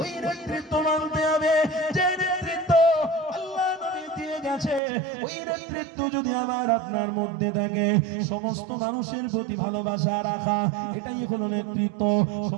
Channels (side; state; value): left; drops out; at 4.8 s